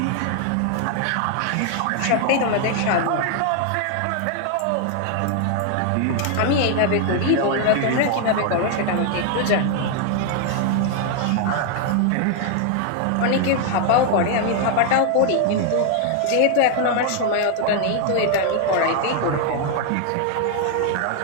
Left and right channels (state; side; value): different; both; correlation 0.00